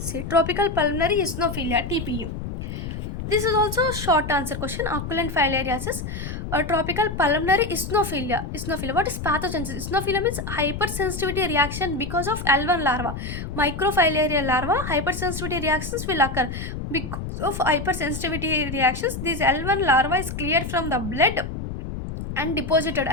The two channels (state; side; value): noise; left; rumble, 6 dB below the sound